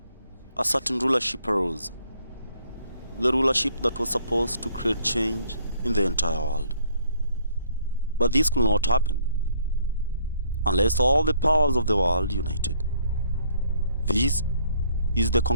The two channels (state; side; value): inverted; both; correlation -0.64